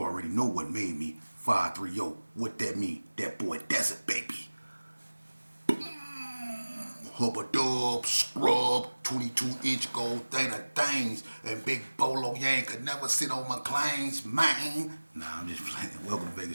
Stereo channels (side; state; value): both; inverted; correlation -1.00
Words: already know what made me 530. What that mean? That boy Desert, baby. Hubba Dub, Scrub, 22-inch gold thing of things, and Big Bolo Yank could never sit on my claims, man. Nah, I'm just playing. Welcome to